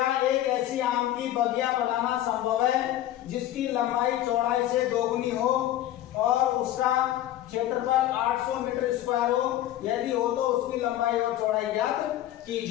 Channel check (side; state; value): right; quieter; 13.2 dB